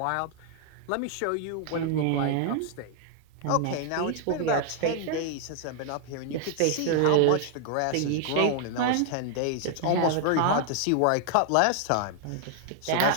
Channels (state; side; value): different; both; correlation 0.00